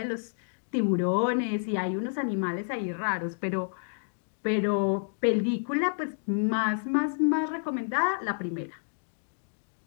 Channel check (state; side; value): silent; right; digital silence